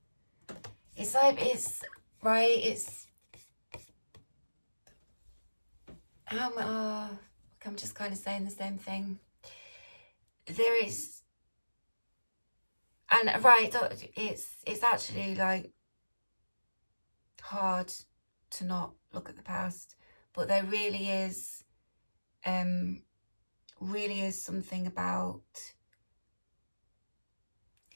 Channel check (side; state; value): both; inverted; correlation -1.00